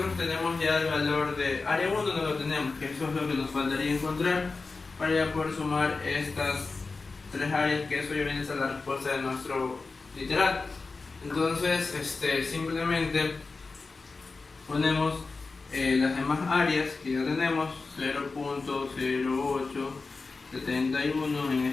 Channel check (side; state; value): right; quieter; 4.0 dB